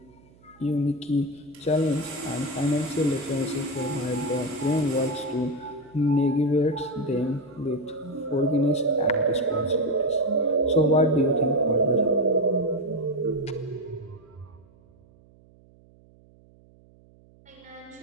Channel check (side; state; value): right; noise; hum, 28 dB below the sound